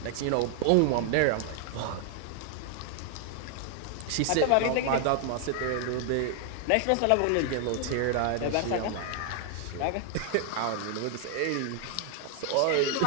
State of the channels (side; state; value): both; different; correlation 0.00